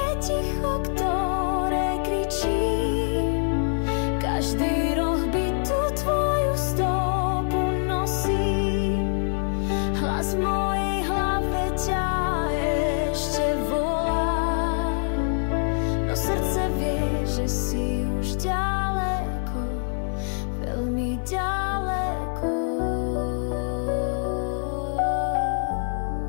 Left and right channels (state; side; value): silent; right; 55 dB below the other